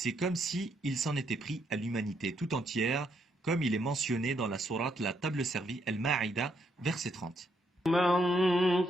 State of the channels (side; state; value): both; normal; correlation 0.75